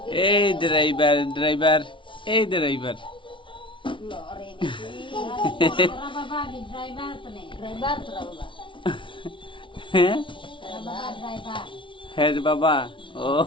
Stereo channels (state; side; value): late; right; 0.25 ms